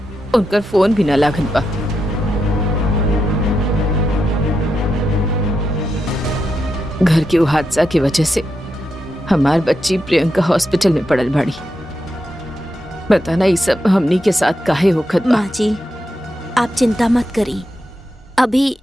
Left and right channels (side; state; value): both; normal; correlation 0.85